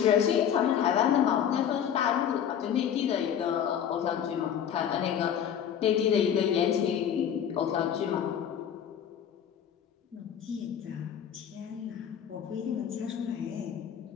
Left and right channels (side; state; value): right; quieter; 9.0 dB